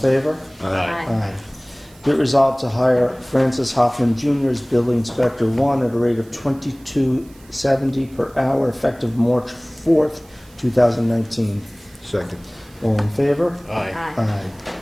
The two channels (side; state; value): right; noise; hiss, 27 dB below the sound